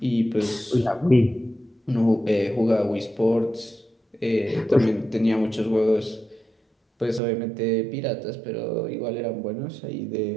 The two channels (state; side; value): drops out; left; at 7.2 s